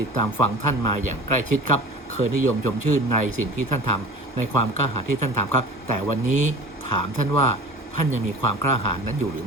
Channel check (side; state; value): both; normal; correlation 0.39